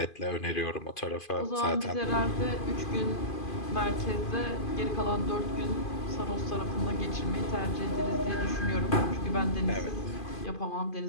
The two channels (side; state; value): right; late; 2.5 ms